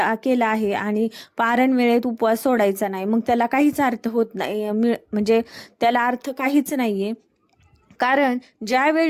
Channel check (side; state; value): both; identical; correlation 1.00